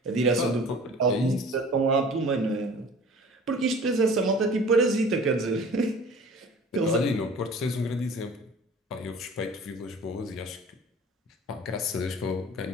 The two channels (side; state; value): both; normal; correlation 0.44